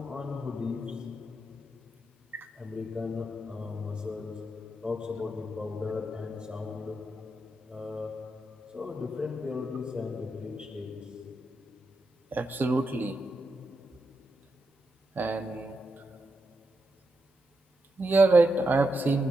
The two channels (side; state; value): both; normal; correlation 0.84